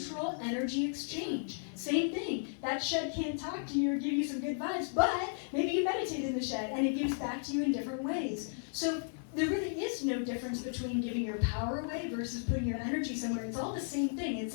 energy exchange. Same thing. That shed can't talk to you or give you some good vibes, but maybe you meditate in the shed and it gives back to you in different ways. So there really is no difference between giving your power away versus putting your energy somewhere. It's all the same thing. It's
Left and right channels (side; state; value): right; silent; 55 dB below the other